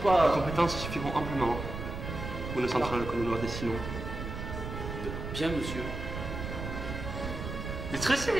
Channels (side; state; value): right; noise; rumble, 6 dB below the sound